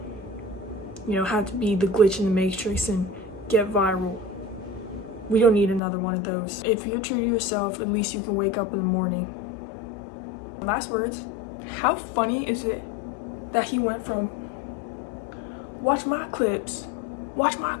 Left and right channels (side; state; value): right; drops out; at 5.8 s